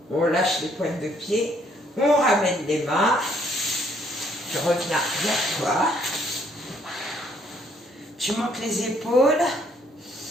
On lâche les pointes de pied. On ramène les mains. Tu reviens vers toi. Tu montes les épaules.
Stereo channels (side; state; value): both; normal; correlation 0.66